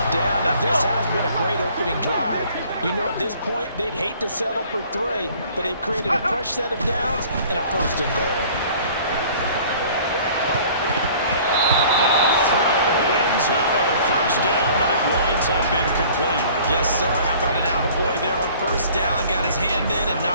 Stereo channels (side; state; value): both; inverted; correlation -0.51